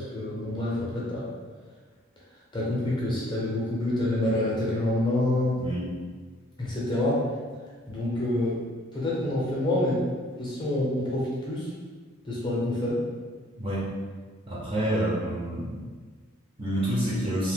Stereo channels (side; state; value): both; normal; correlation 0.61